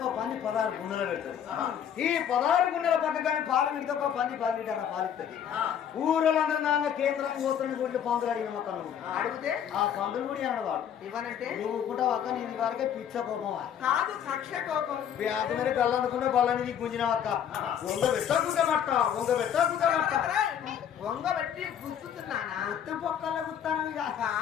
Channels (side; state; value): right; quieter; 9.0 dB